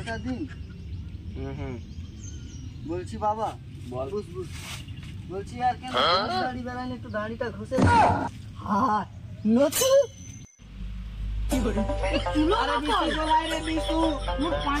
দিন হুম বলছি বাবা বল। বুঝ বুঝ বলছি আর কেন দাড়ি বেড়ান একটু দাড়িটা ঘষে হ্যাঁ নতু আরে বিশু মোর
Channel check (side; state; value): both; identical; correlation 1.00